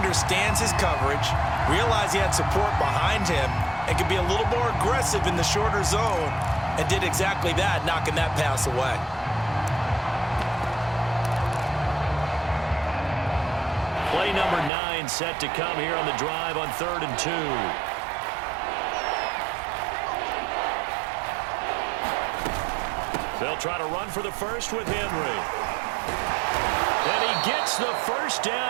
his coverage, realized he had support behind him, and could be a little more aggressive in the shorter zone, and did exactly that, knocking that pass away. Play number 9 set to come here on the drive on 3rd and 2. They'll try to run for the first with Henry. And he gets the first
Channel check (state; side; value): drops out; left; at 14.7 s